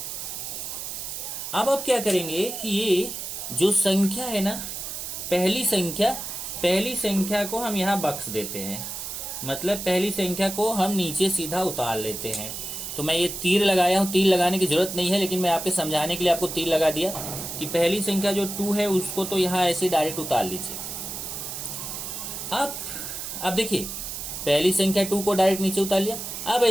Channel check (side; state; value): right; noise; hiss, 7 dB below the sound